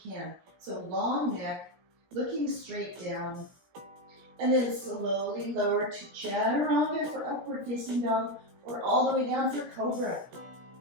can. So long neck, looking straight down. And then slowly lower to chaturanga for upward facing dog, or all the way down for cobra.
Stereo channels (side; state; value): left; late; 17 ms